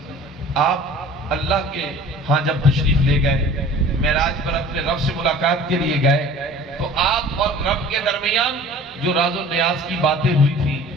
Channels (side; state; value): both; normal; correlation 0.45